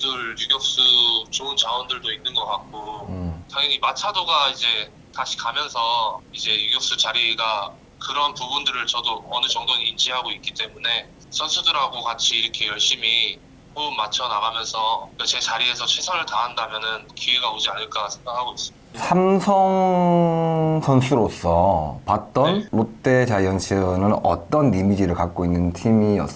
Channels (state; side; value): identical; both; correlation 1.00